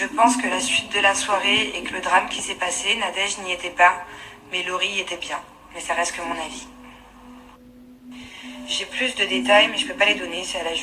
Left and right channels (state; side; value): identical; both; correlation 1.00